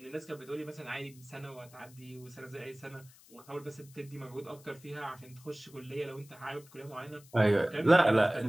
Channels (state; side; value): noise; left; hiss, 24 dB below the sound